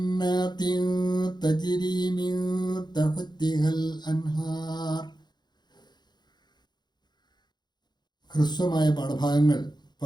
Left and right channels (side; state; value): right; late; 0.21 ms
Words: تجري من تحتها الأنهار. ഹ്രസ്വമായ പാഠഭാഗങ്ങൾ